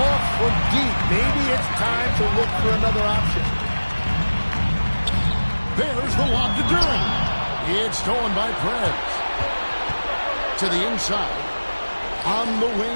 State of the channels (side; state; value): both; inverted; correlation -1.00